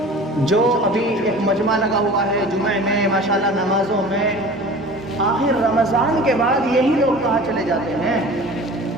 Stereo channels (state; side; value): normal; both; correlation 0.40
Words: جو ابھی ایک مجمع لگا ہوا ہے جمعہ میں، ماشاءاللہ نمازوں میں، آخر رمضان کے بعد یہی لوگ کہاں چلے جاتے ہیں؟